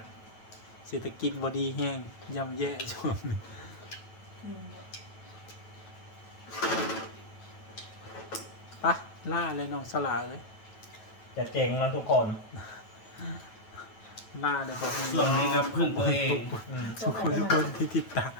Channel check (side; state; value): right; late; 9.2 ms